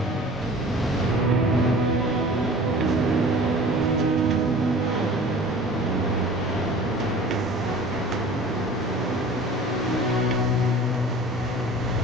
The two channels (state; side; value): normal; both; correlation 0.43